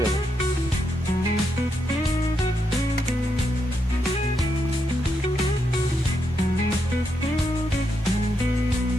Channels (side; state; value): both; normal; correlation 0.81